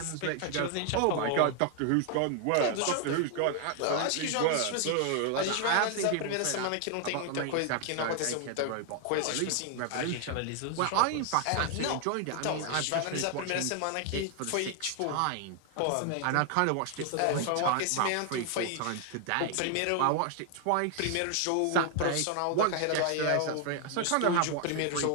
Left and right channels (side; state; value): both; different; correlation 0.00